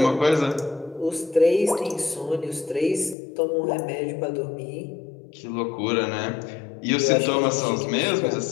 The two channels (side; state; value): right; drops out; at 3.2 s